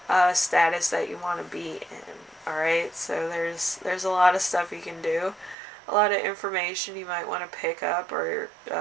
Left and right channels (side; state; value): left; drops out; at 5.6 s